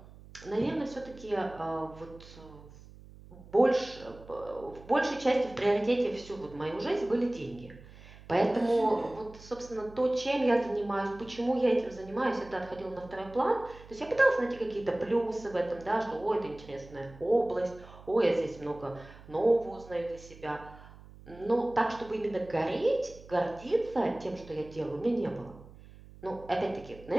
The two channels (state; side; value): noise; right; hum, 20 dB below the sound